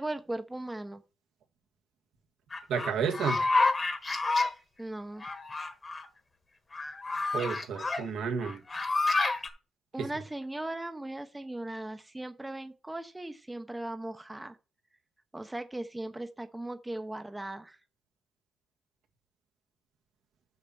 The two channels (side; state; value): both; normal; correlation 0.88